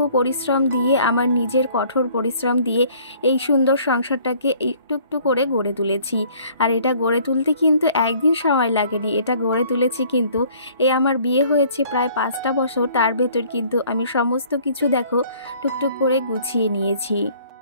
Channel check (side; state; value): both; inverted; correlation -0.56